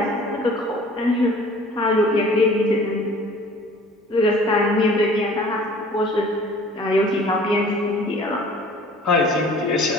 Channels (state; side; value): normal; both; correlation 0.49